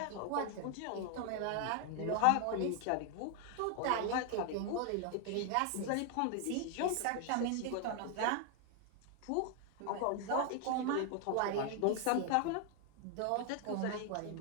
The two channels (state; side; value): different; both; correlation 0.00